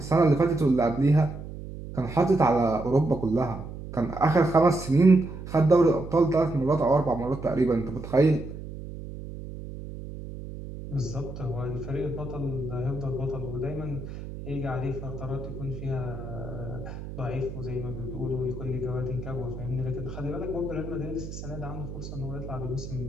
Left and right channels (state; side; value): noise; right; hum, 10 dB below the sound